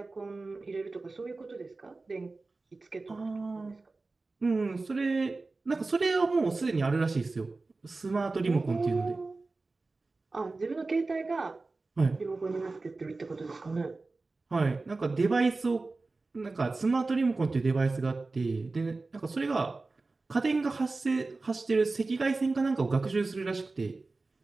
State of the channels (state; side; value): quieter; left; 3.6 dB